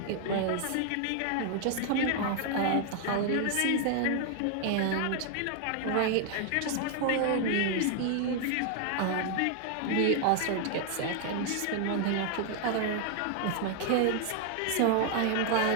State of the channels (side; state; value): both; different; correlation 0.00